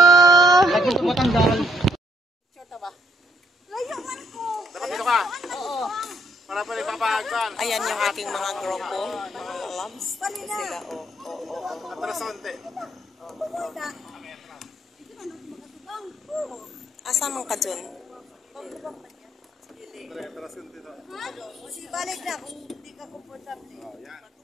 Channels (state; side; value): normal; both; correlation 0.69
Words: Dapat dito ka? Oo. Para pala ipapahagpan. Ayan yung aking mga grupo, mga lalabs. Sila, Atras konti. Asa man ka dyan? Atras konti to. Balik na kung hindi ka komportable.